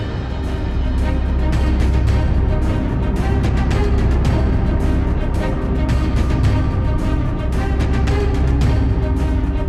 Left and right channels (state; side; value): identical; both; correlation 1.00